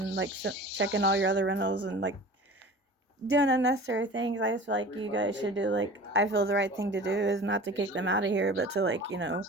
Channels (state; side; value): normal; both; correlation 0.39